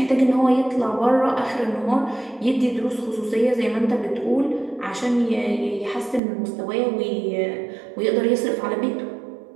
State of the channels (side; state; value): left; drops out; at 6.2 s